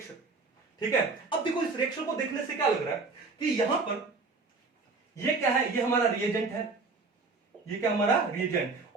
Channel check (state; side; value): quieter; left; 4.0 dB